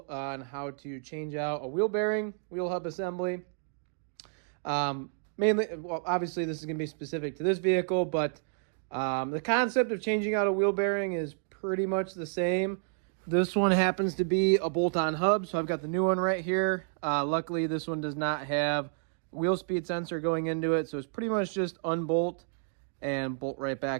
on how to change out a wheel bearing, wheel hub assembly. Mainly, well, obviously this is going to be specific to this vehicle, but the concept of changing out a wheel bearing is pretty much the same. This one happens to be a bolt-on hub, so I've got the new one right here. Luckily, this one does not have wheel speed sensor going into it, so it's pretty much just unbolt and bolt right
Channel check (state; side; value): silent; left; digital silence